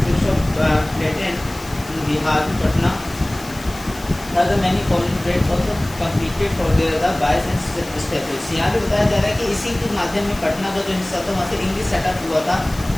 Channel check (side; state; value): left; noise; hiss, 18 dB below the sound